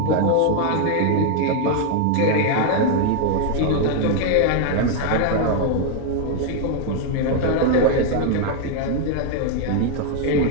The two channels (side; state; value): both; different; correlation 0.00